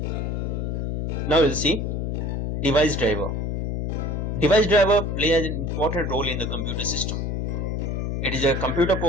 Now we'll see device driver. Device driver plays an important role in the computer system. It is a computer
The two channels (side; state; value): left; noise; hum, 1 dB below the sound